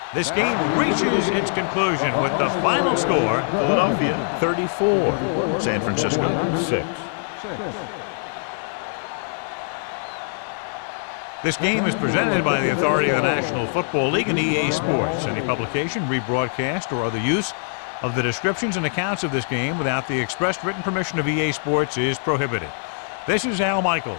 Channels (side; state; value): right; silent; 63 dB below the other